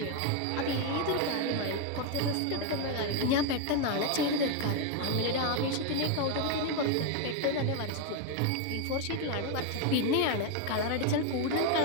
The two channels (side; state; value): both; different; correlation 0.01